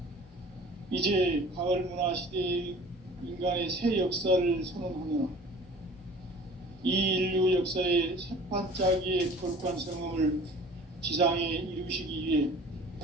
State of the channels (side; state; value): both; normal; correlation 0.46